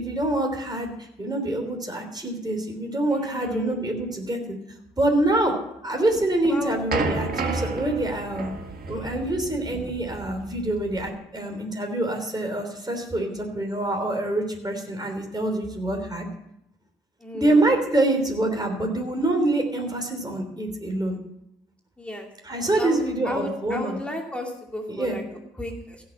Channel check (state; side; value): normal; both; correlation 0.66